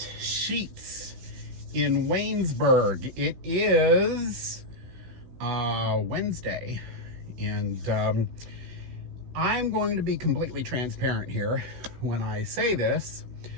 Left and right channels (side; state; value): left; late; 16 ms